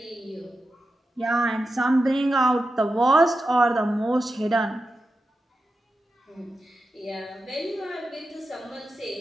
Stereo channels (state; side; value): normal; both; correlation 0.90